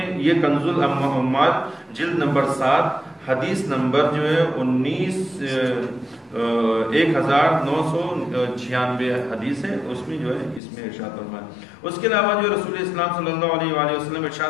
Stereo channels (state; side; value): drops out; right; at 10.6 s